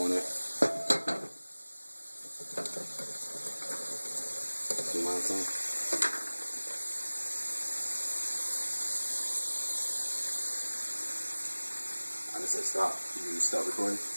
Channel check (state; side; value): inverted; both; correlation -1.00